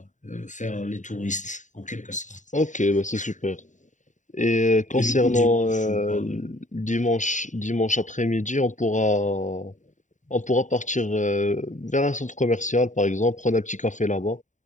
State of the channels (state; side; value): late; right; 0.36 ms